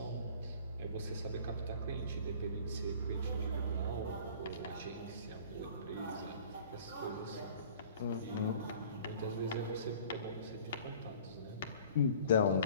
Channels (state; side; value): inverted; both; correlation -0.47